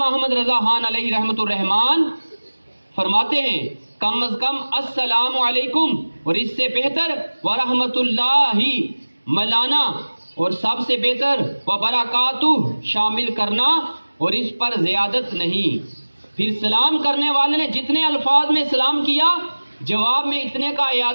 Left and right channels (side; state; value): both; inverted; correlation -1.00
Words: احمد رضا خان علیہ رحمت الرحمان فرماتے ہیں کم از کم السلام علیکم، اور اس سے بہتر ورحمت اللہ ملانا، اور سب سے بہتر وبرکاتہ شامل کرنا، اور اس پر زیادت نہیں۔ پھر سلام کرنے والے نے جتنے الفاظ میں سلام کیا، جواب میں اتنے کا